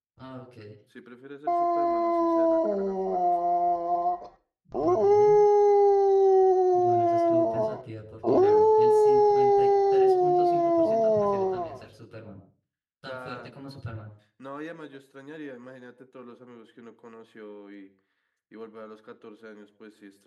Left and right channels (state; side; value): identical; both; correlation 1.00